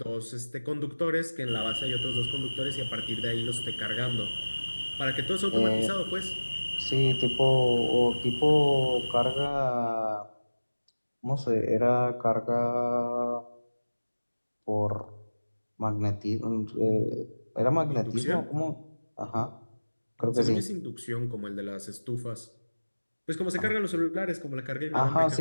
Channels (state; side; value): inverted; both; correlation -1.00